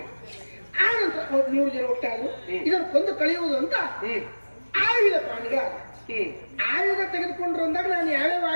ಆ ನಂತರ 3 ಜನ ಒಟ್ಟಾದ್ರು, ಇದನ್ನು ಕೊಂದು ಕಳೆಯುವುದು ಅಂತ ಆಯುಧ ಪ್ರಾಣಿಗ. ಆಯುಧ ತೆಗೆದುಕೊಂಡ್ರು ಅಂದಾಗ ನಾನು ಯಾವ್ಯಾವ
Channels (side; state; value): both; inverted; correlation -1.00